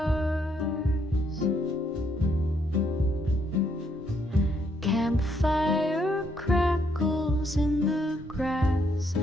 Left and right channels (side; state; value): both; normal; correlation 0.73